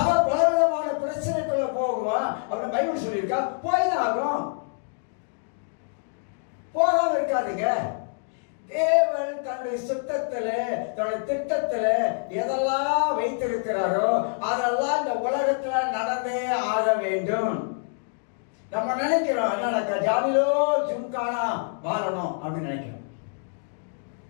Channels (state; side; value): silent; right; 61 dB below the other